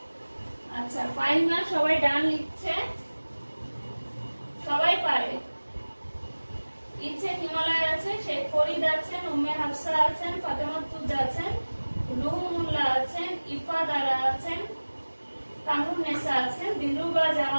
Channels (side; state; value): both; inverted; correlation -1.00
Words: আচ্ছা, ফাইন না, সবাই ডান লিখছে, সবাই পারে। ইচ্ছে হিমালয় আছে, শেখ ফরিদ আছেন, উম্মে হাফসা আছেন, ফাতেমা তুজ আছেন, রুহুল্লাহ আছেন, ইফাদারা আছেন, কামরুন্নেসা আছেন, দিলরুবা